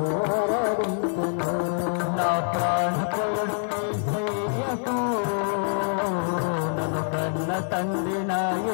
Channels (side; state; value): right; silent; digital silence